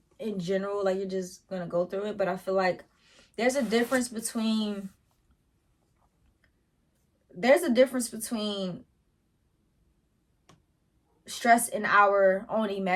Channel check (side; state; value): both; identical; correlation 1.00